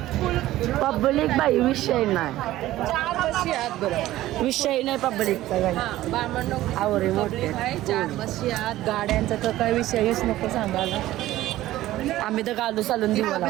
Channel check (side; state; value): left; quieter; 15.4 dB